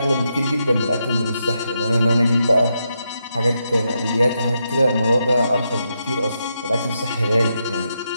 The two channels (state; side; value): inverted; both; correlation -0.82